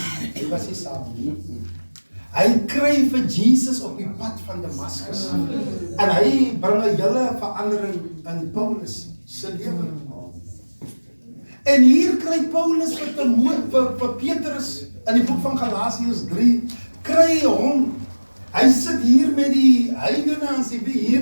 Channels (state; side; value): inverted; both; correlation -1.00